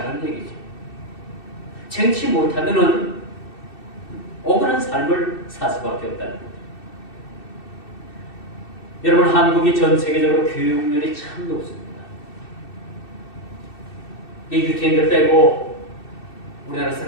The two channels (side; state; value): right; late; 2.6 ms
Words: 얘기죠. 쟁취 못하면은 억울한 삶을 살 수밖에 없다는 거죠. 여러분, 한국이 전 세계적으로 교육률이 참 높습니다. 이 유태인들 빼고 우리나라